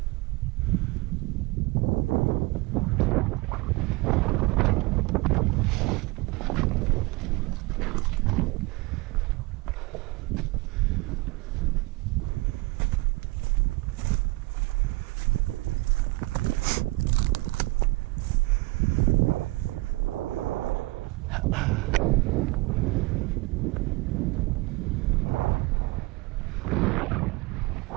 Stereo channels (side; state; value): left; quieter; 23.0 dB